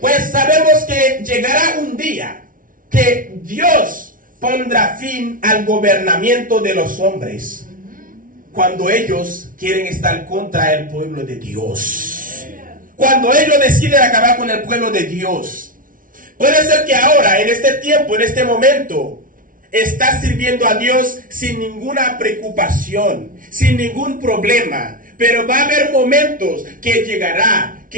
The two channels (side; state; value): left; late; 0.39 ms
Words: sabemos que llegará un día que Dios pondrá fin al gobernamiento de los hombres, cuando ellos quieren estar contra el pueblo de Dios. Cuando ellos deciden acabar con el pueblo de Dios. Puede ser que ahora, en este tiempo, en este momento, estás sirviendo a Dios sin ninguna preocupación, sin ningún problema. Pero va a haber momentos que llegará